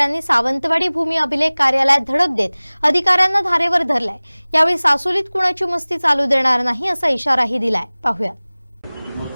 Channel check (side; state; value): both; inverted; correlation -1.00